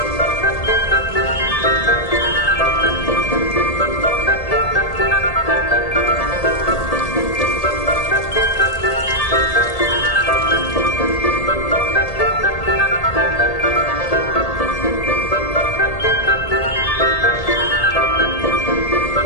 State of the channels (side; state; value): right; late; 1.8 ms